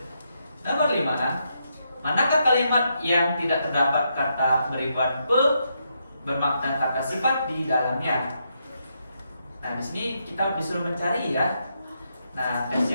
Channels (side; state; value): both; inverted; correlation -0.80